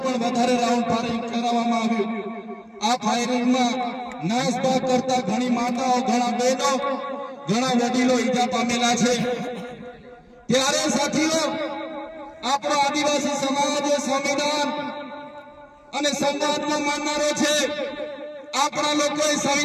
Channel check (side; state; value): both; identical; correlation 1.00